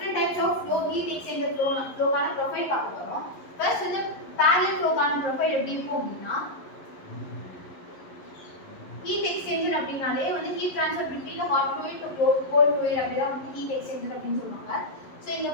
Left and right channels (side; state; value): right; late; 11 ms